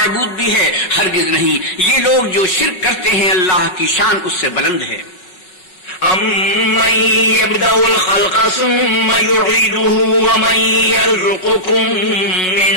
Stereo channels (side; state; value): right; late; 5.4 ms